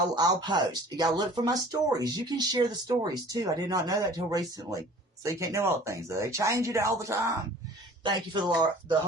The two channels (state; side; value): normal; both; correlation 0.47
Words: post. You got to look for my stories. You can share the stories too. I did not know that till recently. So you can't know all the things. They change it all the time. Thank you for the